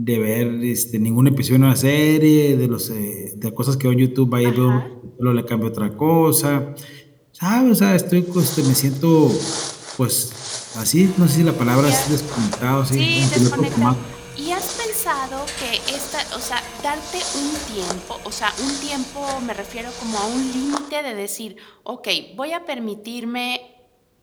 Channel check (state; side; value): identical; both; correlation 1.00